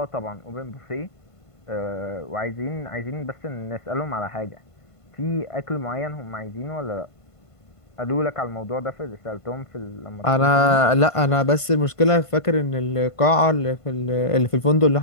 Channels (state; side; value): late; right; 1.5 ms